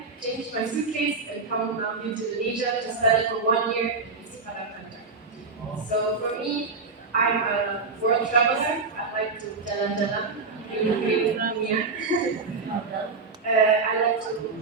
changed my suitcase, and come now here to Indonesia to study for 1 year in Sumatera. So for me, I'm a world traveler. I like to jalan-jalan, keliling dunia. I like to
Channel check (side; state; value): left; quieter; 4.3 dB